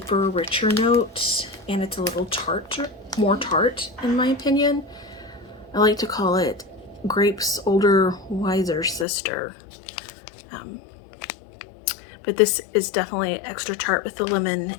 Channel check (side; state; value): right; drops out; at 9.1 s